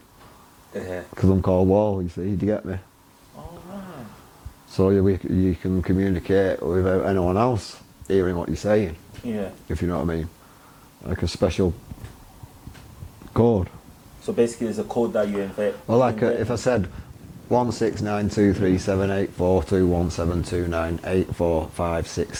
Yeah. Because I'm called Wall, you see, do you get me? Oh, right. So you can communicate without anyone else hearing what you're saying, Yeah. if you know what I mean. Like a special code. So basically there's a code that you invent. Well, like if I said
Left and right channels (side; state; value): both; identical; correlation 1.00